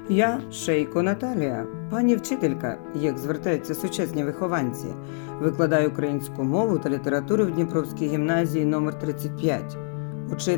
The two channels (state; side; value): silent; right; digital silence